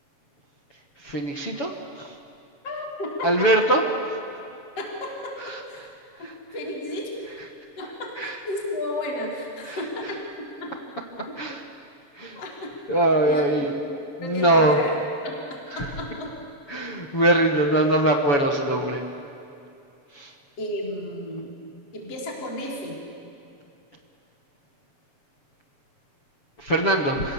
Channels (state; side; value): late; right; 7.1 ms